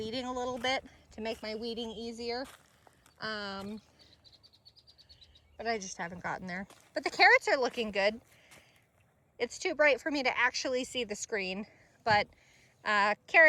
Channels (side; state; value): both; identical; correlation 1.00